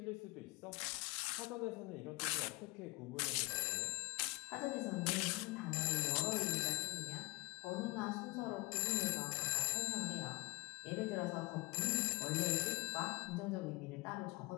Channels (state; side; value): quieter; right; 25.5 dB